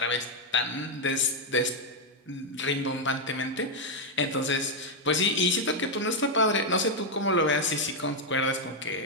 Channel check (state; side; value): normal; both; correlation 0.01